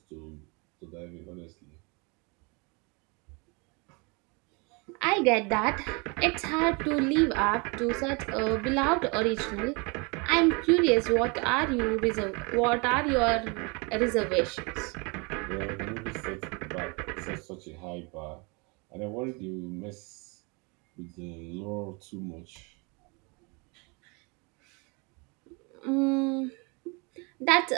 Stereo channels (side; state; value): left; quieter; 30.3 dB